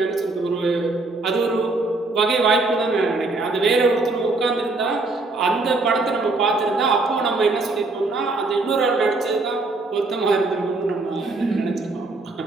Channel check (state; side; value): quieter; left; 3.3 dB